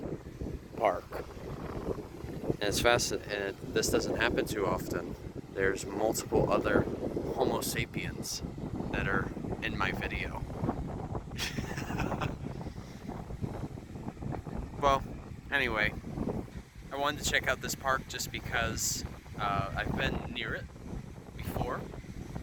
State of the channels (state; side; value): identical; both; correlation 1.00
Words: Park. And it's fascinating, and this doesn't happen too often. There's multiple other Homo sapiens that are in my video. Well, anyway, I wanted to check out this park just because I've been near it before,